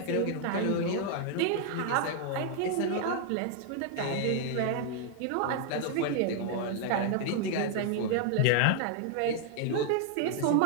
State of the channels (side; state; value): both; different; correlation 0.00